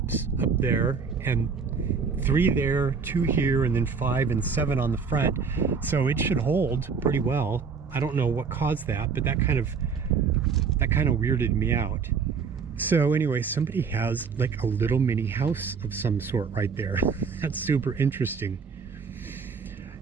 up there, and 3 there, 2 here, and then 5 and 7 on the front. So it should hold pretty well. I don't know what caused that, but that kind of weirded me out. So anyway, somebody has like a little mini house of some sort right there. That's super interesting.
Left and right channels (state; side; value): quieter; left; 5.7 dB